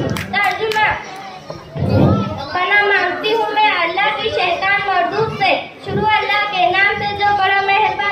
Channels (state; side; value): identical; both; correlation 1.00